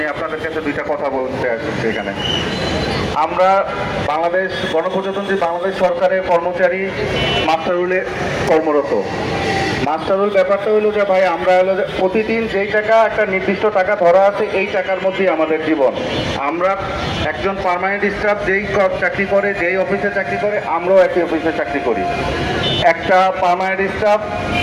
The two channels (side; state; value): both; identical; correlation 1.00